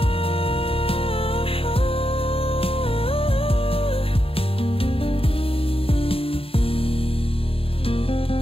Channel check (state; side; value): late; right; 0.27 ms